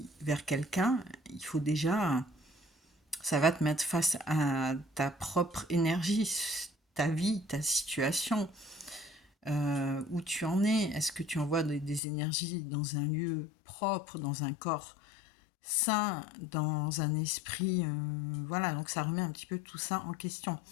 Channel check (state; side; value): drops out; right; at 12.0 s